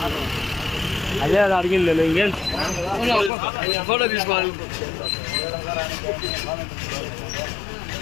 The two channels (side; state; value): right; drops out; at 3.3 s